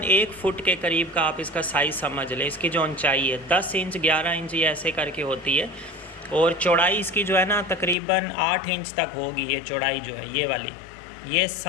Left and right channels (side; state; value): right; drops out; at 8.0 s